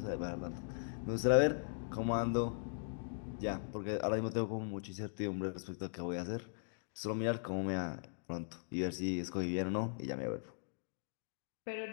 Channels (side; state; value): right; silent; digital silence